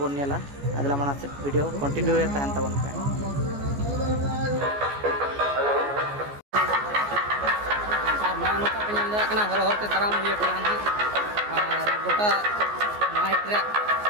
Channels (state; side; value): late; left; 14 ms